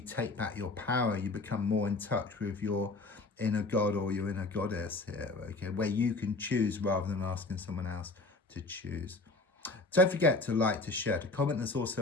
back your power. You become more in touch with your inner god or your inner goddess here, okay, where you can choose rather than asking someone else to choose. Don't forget to like, to share, to comment. There's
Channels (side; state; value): right; quieter; 3.3 dB